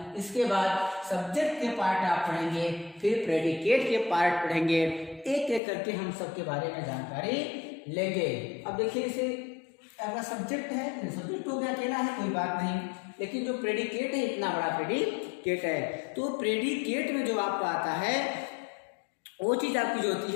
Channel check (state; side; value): drops out; right; at 5.6 s